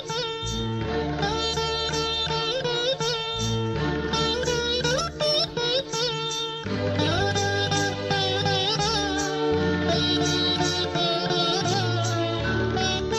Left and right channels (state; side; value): identical; both; correlation 1.00